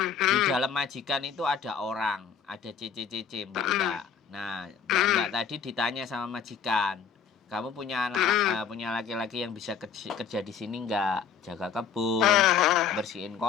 di dalam majikan itu ada orang, ada CC, mbak-mbak. Nah, mbak-mbak tadi ditanya sama majikan, kamu punya punya laki-laki yang bisa kerja di sini nggak? Jaga kebun, bersihin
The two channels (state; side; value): quieter; right; 7.1 dB